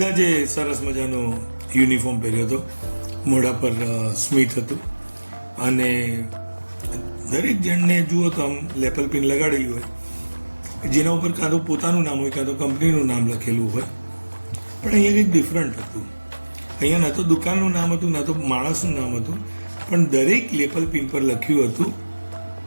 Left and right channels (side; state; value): both; inverted; correlation -1.00